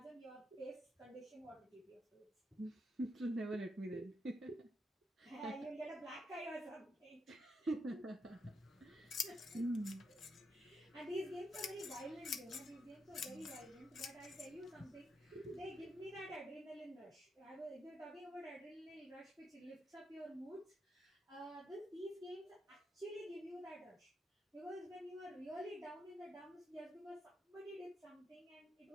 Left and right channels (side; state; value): both; normal; correlation 0.81